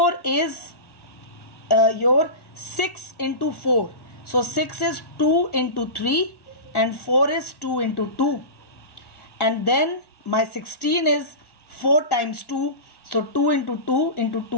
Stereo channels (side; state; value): right; late; 1.6 ms